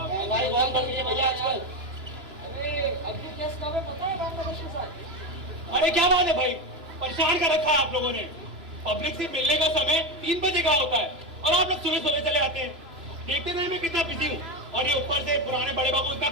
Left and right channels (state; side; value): late; left; 3.1 ms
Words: महंगाई बहुत बढ़ गई है भैया आजकल। अरे अभी केस कब है पता है बांग्लादेश के साथ? अरे क्या बात है भाई, परेशान कर रखा है आप लोगों ने। पब्लिक से मिलने का समय 3 बजे का होता है और आप लोग सुबह सुबह चले आते हैं। देखते नहीं मैं कितना बिजी हूँ, और ये ऊपर से पुराने बड़े बाबू इतना